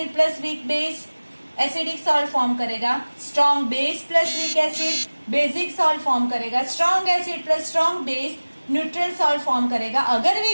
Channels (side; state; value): both; inverted; correlation -1.00